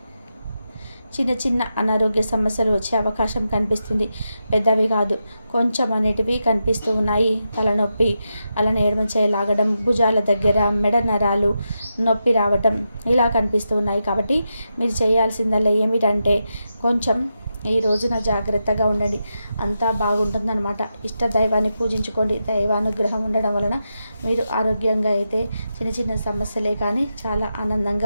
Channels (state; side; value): inverted; both; correlation -0.87